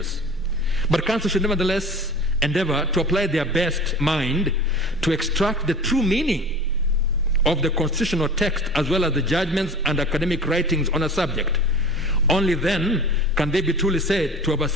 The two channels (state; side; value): normal; both; correlation 0.38